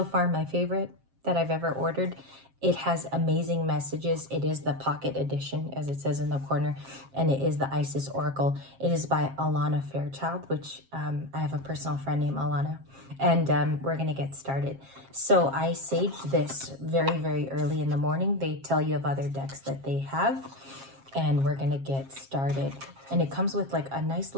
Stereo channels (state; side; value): late; left; 7.4 ms